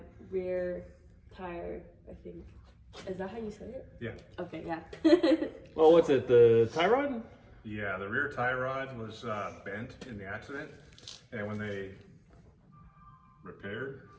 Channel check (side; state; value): both; identical; correlation 1.00